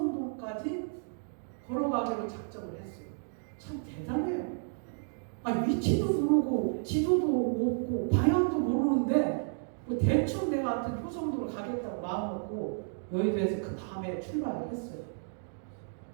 걸어가기로 작정을 했어요. 참 대단해요. 위치도 모르고 지도도 없고 방향도 모르는데 뭐 대충 내가 하여튼 효성도로 가겠다고 마음 먹고 여의도에서 그 밤에 출발을 했어요.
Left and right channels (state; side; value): silent; left; digital silence